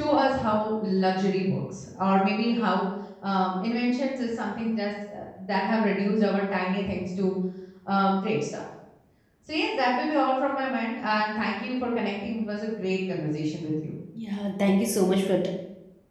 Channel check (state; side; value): identical; both; correlation 1.00